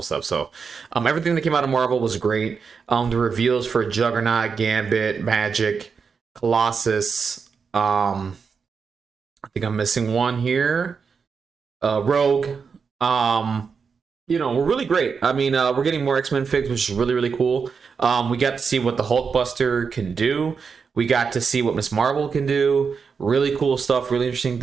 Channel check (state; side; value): quieter; left; 5.7 dB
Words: stuff. So, everything that came out of Marvel was great. The reveals for Juggernaut, Gambit, Magic, Colossus. I think I'm missing one here. Rogue. You know, we're really great. I mean, we're getting more X-Men figs, which is really, really cool. We got to see what the Hulkbuster can do. We got to see what Miss Marvel can do. Really cool stuff, really interesting